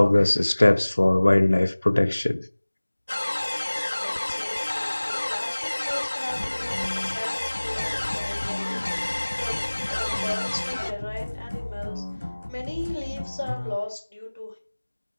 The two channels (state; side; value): inverted; both; correlation -1.00